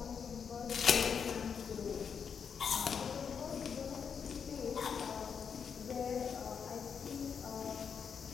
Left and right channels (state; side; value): quieter; right; 6.8 dB